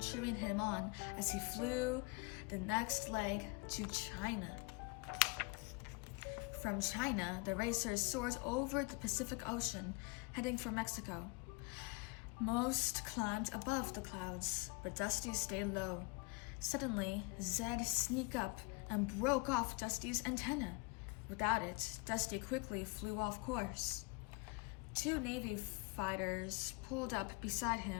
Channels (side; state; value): right; quieter; 29.7 dB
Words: him on as he flew the next leg to China. From China, the racers soared over the Pacific Ocean, heading for Mexico. Most climbed above the clouds, but Dusty stayed low. Suddenly, Zed sneaked up and broke off Dusty's antenna. Without it, Dusty quickly flew off course. Two Navy fighters pulled up beside